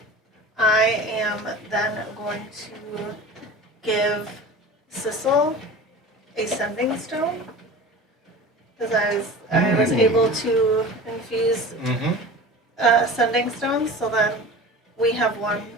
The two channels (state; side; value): normal; both; correlation 0.36